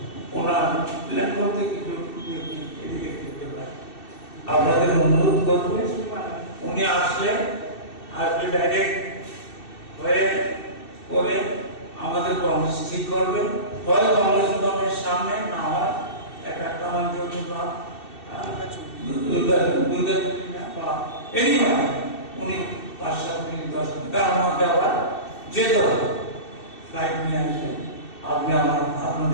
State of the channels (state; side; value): late; right; 2.7 ms